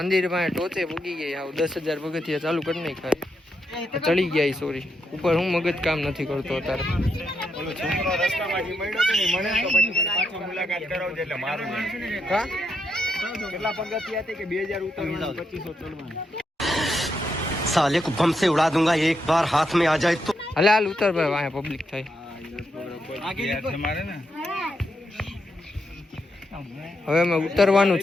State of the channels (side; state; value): both; normal; correlation 0.81